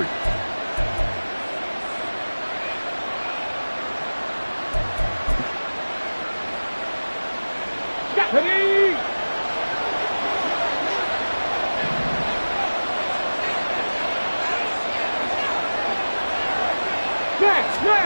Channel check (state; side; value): inverted; both; correlation -1.00